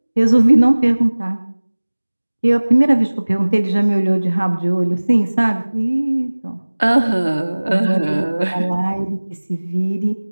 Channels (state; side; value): inverted; both; correlation -1.00